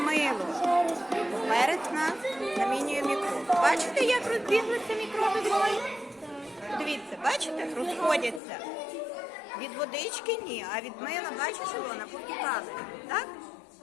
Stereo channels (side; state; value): right; drops out; at 8.4 s